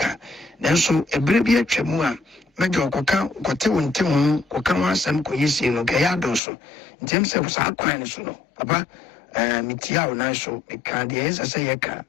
Then so a brevia chemua, Major Coca, Cotewan Timon, Cocawa, Sam Coyisi, no Gayadoso, James of Sâcks, Papa, Mitiao Naso, Micandies, as a yaka,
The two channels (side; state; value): right; drops out; at 6.4 s